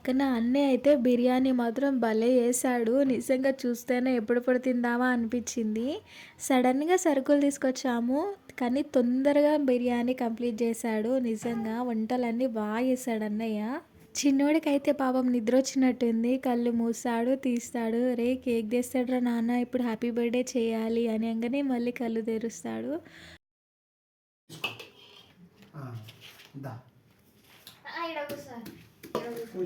అన్నయ్య అయితే బిర్యానీ మాత్రం భలే వేసాడు. నిజంగా చూస్తేనే ఎప్పుడెప్పుడు తిందామా అనిపించింది. సడన్గా సరుకులు తీసుకొచ్చాము, కానీ తొందరగా బిర్యానీ కంప్లీట్ చేశాడు. నిజంగా వంటలన్నీ బాగా చేశాడు అన్నయ్య. చిన్నోడికైతే పాపం నిద్ర వచ్చినట్టుంది, కళ్ళు మూసాడు తీస్తాడు. రే కేక్ తెస్తాడురా నాన్న, ఇప్పుడు హ్యాపీ బర్త్డే చేయాలి అని అనగానే మళ్ళీ కళ్ళు తెరుస్తాడు.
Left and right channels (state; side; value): identical; both; correlation 1.00